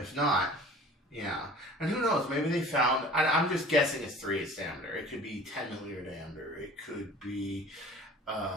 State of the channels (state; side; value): normal; both; correlation 0.45